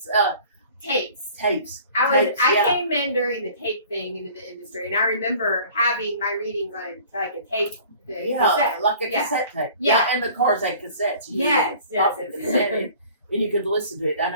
Tapes. tapes. I Tapes, yeah. came in during the tape thing into the industry, and I remember having my readings on like a tape. Cassette. Like a Yeah. cassette tape. Yeah. And the cars had cassettes. You Yes, could pop yes, the yes. cassette in, and you could listen to it. And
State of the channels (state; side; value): inverted; both; correlation -0.48